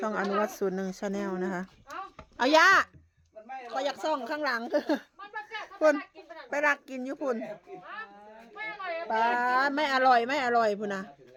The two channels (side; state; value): both; identical; correlation 1.00